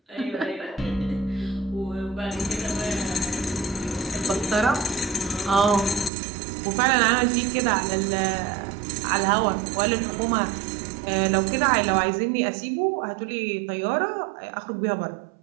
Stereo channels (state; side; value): drops out; left; at 6.1 s